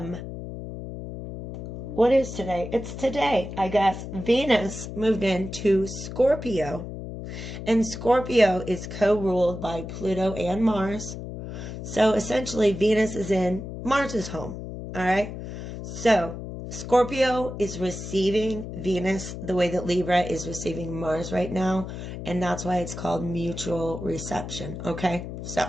What is today? It's today, I guess. Venus moved into Scorpio, and Scorpio is co-ruled by Pluto and Mars. So essentially, Venus is in Mars's home. All right. So Scorpio is receiving Venus the way that Libra is receiving Mars right now. And that's why it's called mutual reception. Okay.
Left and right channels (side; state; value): left; noise; hum, 9 dB below the sound